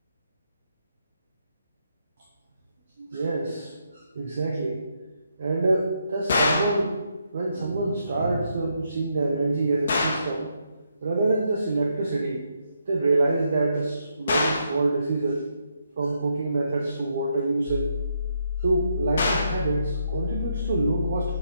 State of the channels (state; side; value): inverted; both; correlation -0.78